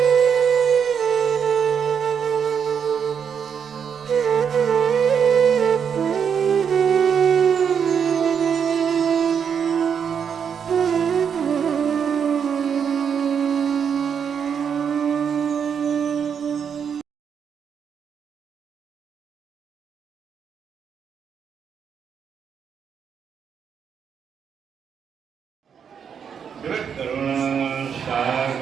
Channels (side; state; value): left; quieter; 7.3 dB